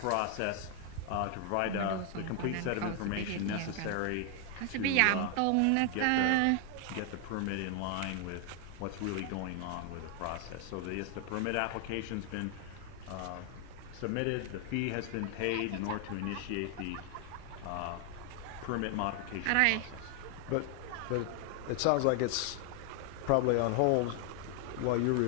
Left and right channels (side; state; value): both; different; correlation 0.00